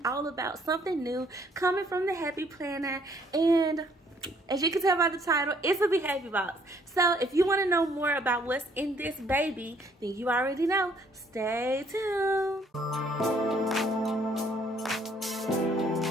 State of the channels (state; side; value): normal; both; correlation 0.64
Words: all about something new coming from the Happy Planner, and as you can tell by the title, it's a Be Happy box. So if you want to know more about what's in this baby, then you already know. Stay tuned.